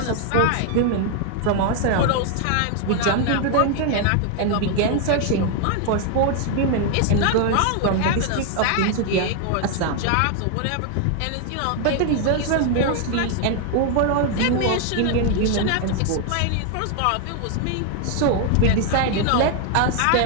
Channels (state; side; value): different; both; correlation 0.00